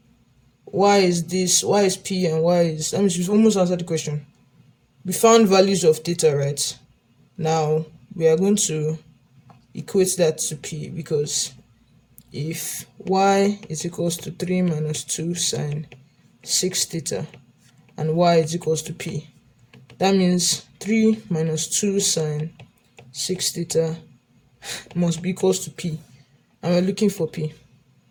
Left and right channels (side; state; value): both; identical; correlation 1.00